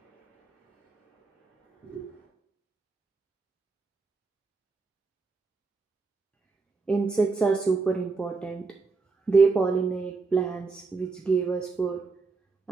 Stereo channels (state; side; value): quieter; left; 4.2 dB